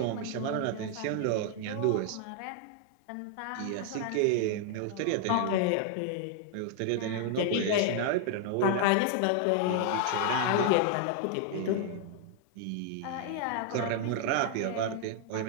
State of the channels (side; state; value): both; different; correlation 0.00